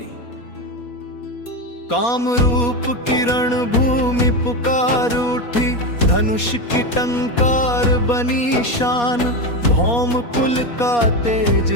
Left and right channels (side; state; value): right; late; 4.2 ms